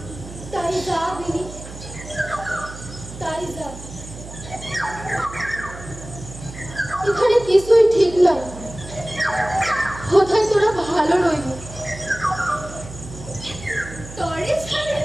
তাই যা বিনি, তাই যা। এখানে কিছুই ঠিক নয়। কোথায় তোরা ভালো রইবি? তরে ছাড়ে,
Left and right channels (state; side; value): noise; right; hum, 14 dB below the sound